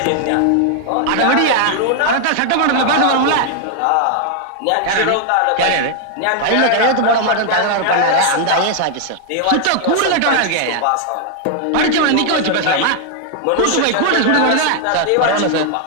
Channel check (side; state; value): both; different; correlation 0.00